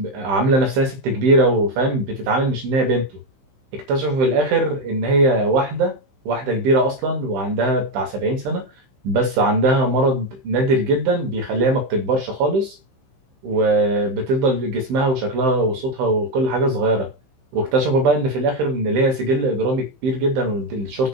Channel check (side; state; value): left; late; 15 ms